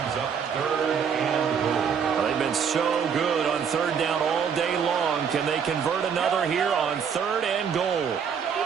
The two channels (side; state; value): left; quieter; 7.1 dB